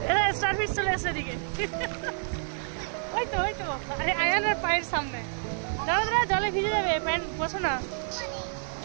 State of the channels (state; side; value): silent; left; 59 dB below the other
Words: স্টারফিশ চলে আসছে এদিকে। ওই তো আরে আয়ানের পায়ের সামনে, দাদা জলে ভিজে যাবে, প্যান্ট বসো না।